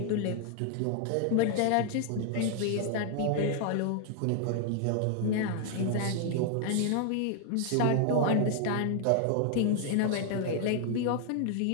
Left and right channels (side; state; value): both; different; correlation 0.00